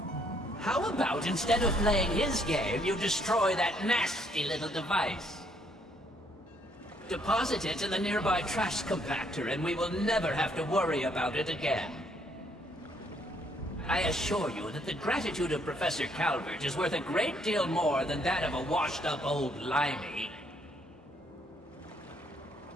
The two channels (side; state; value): both; normal; correlation 0.68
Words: How about instead of playing his game, you destroy that nasty little device? Deposit it in the nearby trash compactor and we will never have to worry about it again. I assure you that the gratitude of Professor Calvert is worth a great deal more than that of a washed-up old limey.